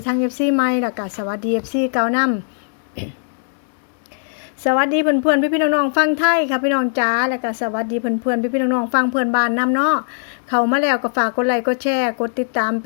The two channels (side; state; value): right; silent; digital silence